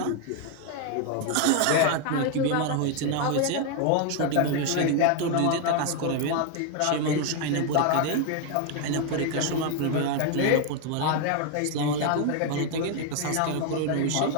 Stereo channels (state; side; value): different; both; correlation 0.01